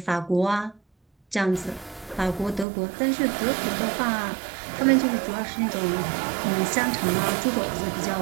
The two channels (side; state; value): left; drops out; at 2.7 s